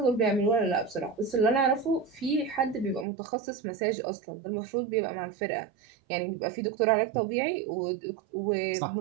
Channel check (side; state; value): left; drops out; at 3.1 s